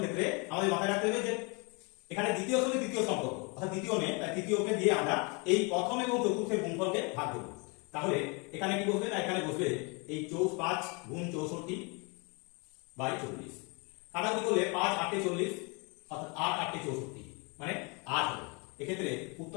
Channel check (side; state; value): right; quieter; 31.4 dB